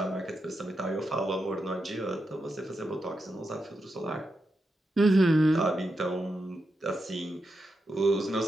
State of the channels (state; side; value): normal; both; correlation 0.86